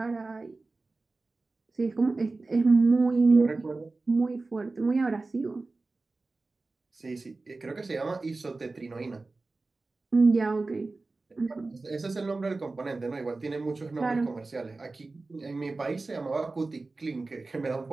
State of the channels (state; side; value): quieter; left; 3.5 dB